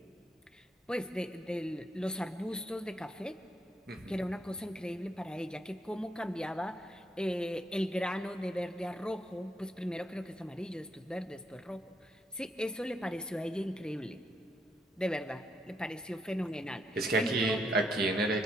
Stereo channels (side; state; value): both; normal; correlation 0.76